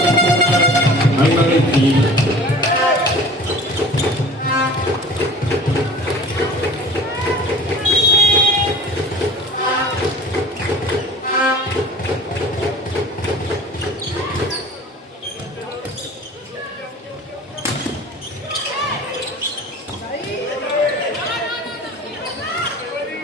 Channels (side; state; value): both; normal; correlation 0.41